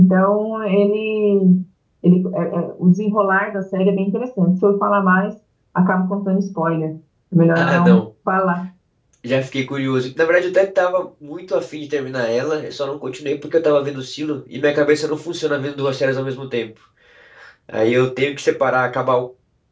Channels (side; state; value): both; identical; correlation 1.00